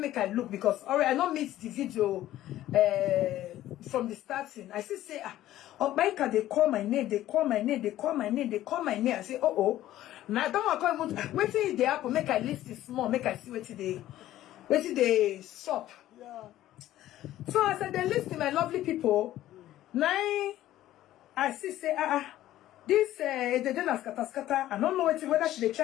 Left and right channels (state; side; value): quieter; right; 13.9 dB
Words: I look because already I don't miss the video from the starting. I say oh my God, they call my name, they call my name, they call my name, they call my name. I say oh. Now I don't want to come. Waiting they happen. Make I list it small. Make I see what they stop. Yeah. So I said they listen, my lovely people. Now I see say this they didn't ask scatter. I don't know whether they